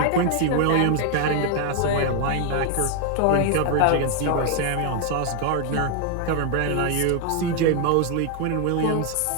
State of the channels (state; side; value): different; both; correlation 0.00